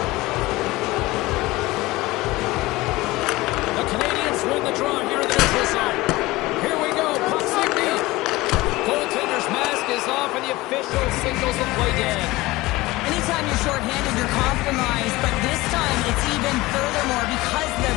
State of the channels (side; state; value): right; quieter; 19.9 dB